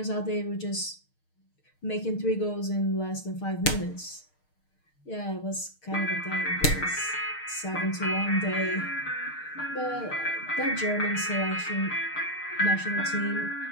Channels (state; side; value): late; right; 6.5 ms